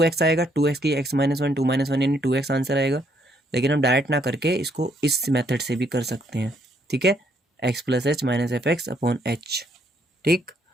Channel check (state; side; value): normal; both; correlation 0.70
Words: आएगा, 2x की x माइनस 1 2 माइनस 1 यानी 2x आंसर आएगा, लेकिन हम डायरेक्ट ना करके इसको इस मेथड से भी कर सकते हैं, ठीक है, x plus H minus F x upon h. ठीक,